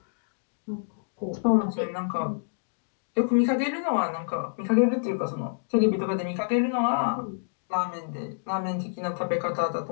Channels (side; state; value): right; silent; digital silence